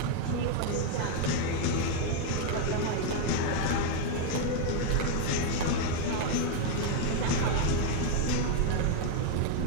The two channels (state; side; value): different; both; correlation 0.00